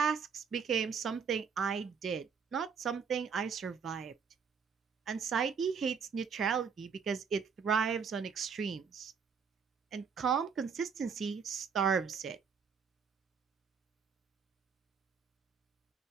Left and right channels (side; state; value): left; quieter; 6.2 dB